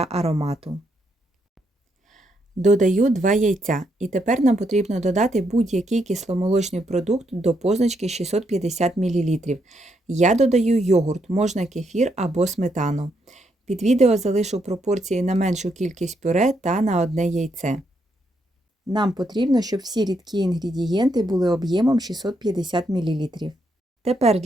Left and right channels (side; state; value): both; normal; correlation 0.77